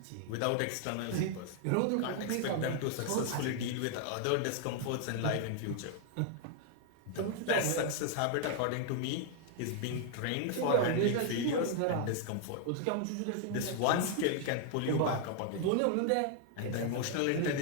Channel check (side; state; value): both; different; correlation 0.00